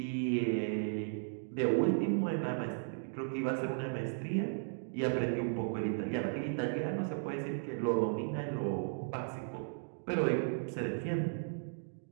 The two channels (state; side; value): silent; left; digital silence